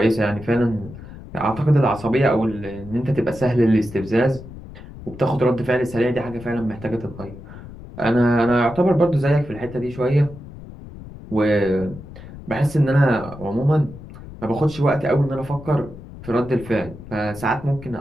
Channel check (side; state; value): left; noise; rumble, 15 dB below the sound